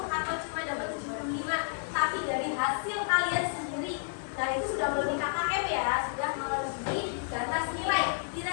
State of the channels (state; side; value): silent; right; digital silence